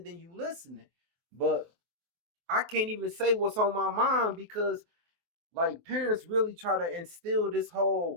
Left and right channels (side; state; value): left; late; 23 ms